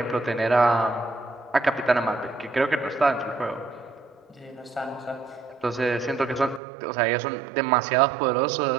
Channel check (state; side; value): drops out; left; at 6.6 s